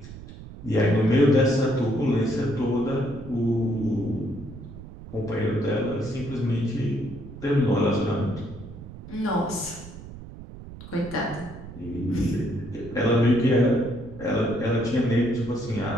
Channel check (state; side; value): noise; right; rumble, 14 dB below the sound